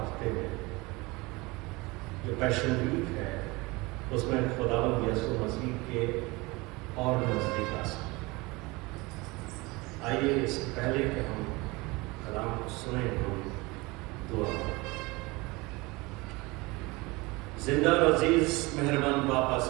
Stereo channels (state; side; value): quieter; left; 23.8 dB